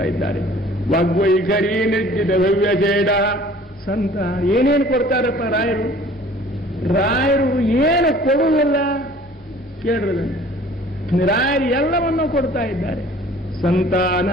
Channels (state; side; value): normal; both; correlation 0.50